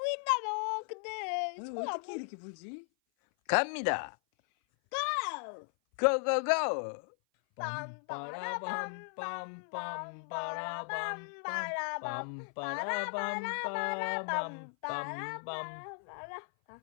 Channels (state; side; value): silent; right; 54 dB below the other